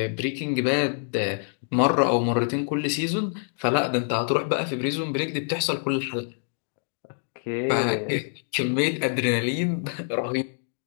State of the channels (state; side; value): silent; right; digital silence